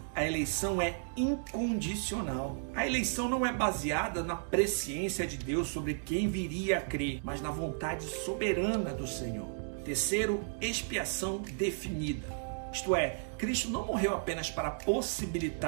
a eleição é incondicional. A eleição não é baseada na presciência de Deus sobre quem viria a crer, mas na vontade soberana do Senhor. Terceiro, expiação definida. Isto é, Cristo não morreu apenas para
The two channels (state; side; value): silent; left; digital silence